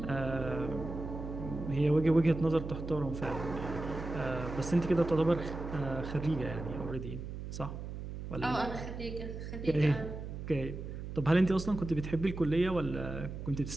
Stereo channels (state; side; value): noise; right; hum, 8 dB below the sound